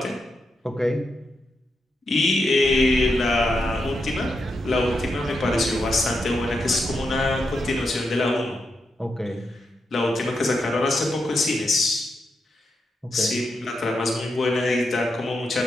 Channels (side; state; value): both; normal; correlation 0.84